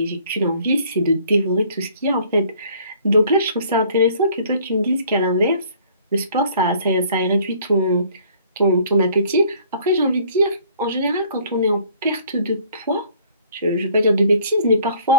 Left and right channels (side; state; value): both; inverted; correlation -0.57